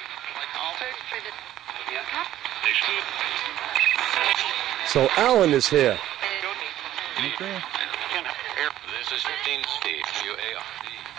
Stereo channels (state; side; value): quieter; left; 12.9 dB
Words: So Alan is here. Okay. This is Dean Steve,